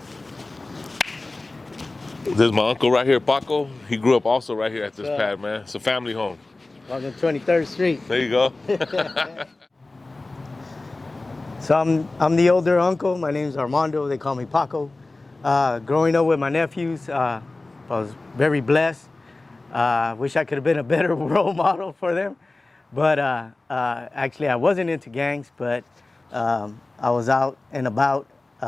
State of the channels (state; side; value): quieter; right; 3.1 dB